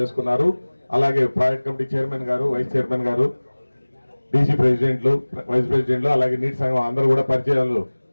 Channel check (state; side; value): inverted; both; correlation -1.00